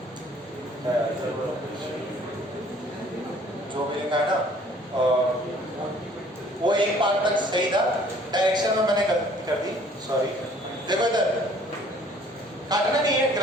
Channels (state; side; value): normal; both; correlation 0.56